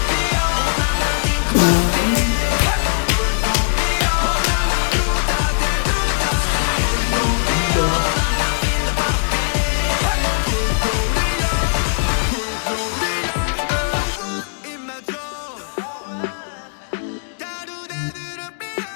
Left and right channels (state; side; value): silent; right; digital silence